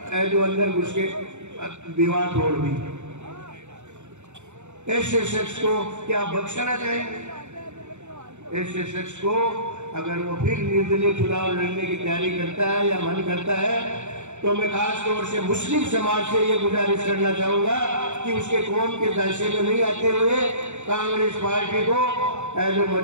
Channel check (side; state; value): left; late; 0.83 ms